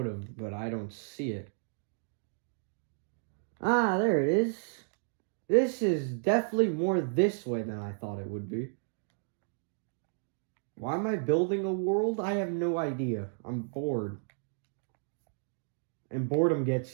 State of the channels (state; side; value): silent; left; digital silence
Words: have, but I don't see it. Ah, there it is. This is definitely more this way than I thought it would be. Why am I building a world? I have no idea. I'm bored. And boredom gets